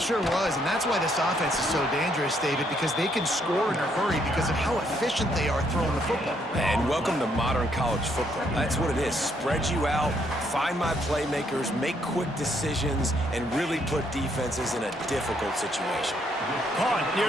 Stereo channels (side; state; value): both; normal; correlation 0.71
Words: was, and that's why this offense is so dangerous, David, because they can score in a hurry because of how efficient they are throwing the football. And welcome to modern college football. That's what it is. Spread you out, find my playmakers, make quick decisions, and really put defenses in a difficult situation. Caught